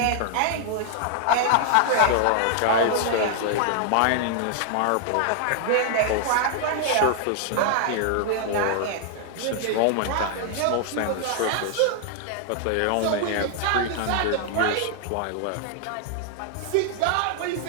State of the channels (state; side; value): different; both; correlation 0.00